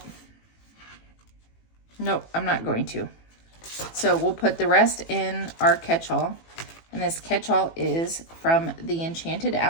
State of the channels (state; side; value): late; right; 18 ms